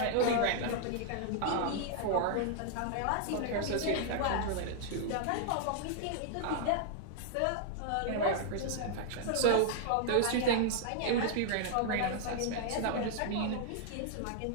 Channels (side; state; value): both; different; correlation -0.01